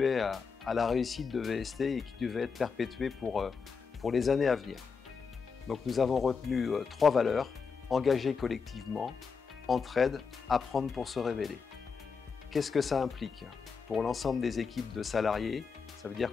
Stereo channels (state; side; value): quieter; right; 5.5 dB